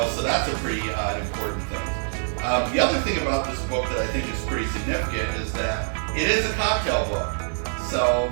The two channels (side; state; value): left; silent; digital silence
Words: So that's a pretty important thing. The other thing about this book that I think is pretty significant is that it is a cocktail book. So,